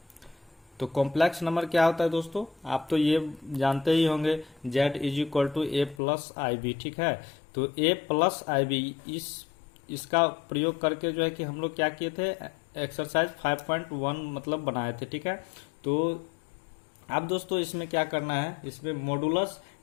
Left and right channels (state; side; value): drops out; right; at 6.0 s